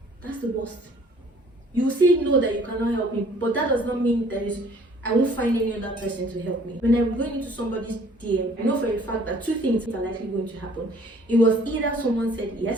That's the worst. You say no, that you cannot help me, but that does not mean I won't find any other person to help me. When I'm going into somebody's DM, I know for a fact that two things are likely going to happen. It was either someone said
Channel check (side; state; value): both; normal; correlation 0.56